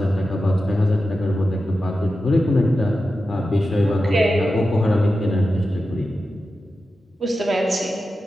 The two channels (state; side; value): normal; both; correlation 0.91